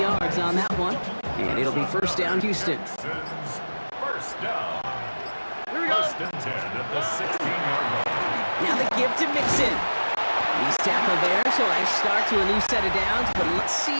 yards on that one. And it'll be 1st down, Houston. First down. First and 10 at the 16-yard line. Now the give to Mixon. He's tackled there, so I start to a new set of downs, but let's see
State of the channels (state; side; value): inverted; both; correlation -1.00